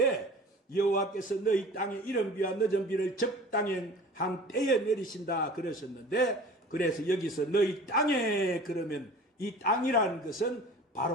여호와께서 너희 땅에 이른 비와 늦은 비를 적당한 때에 내리신다 그러셨는데, 그래서 여기서 너희 땅에 그러면 이 땅이라는 것은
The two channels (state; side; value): normal; both; correlation 0.43